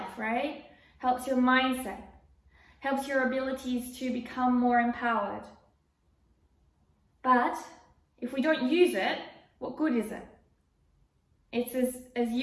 right? Helps your mindset, helps your abilities to become more empowered. But if we don't use it, what good is it? It's as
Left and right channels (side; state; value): both; identical; correlation 1.00